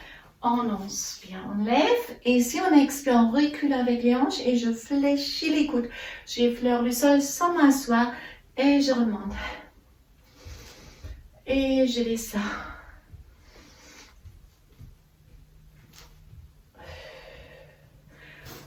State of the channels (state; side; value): identical; both; correlation 1.00